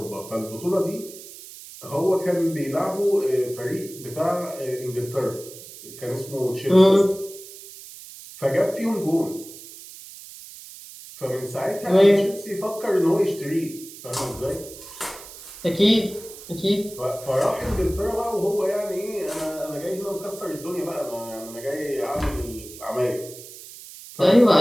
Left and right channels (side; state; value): right; noise; hiss, 16 dB below the sound